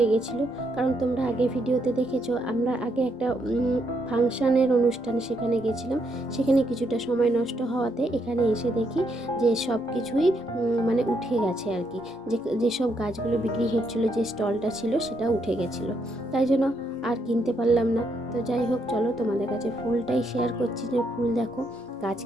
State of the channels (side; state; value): both; normal; correlation 0.76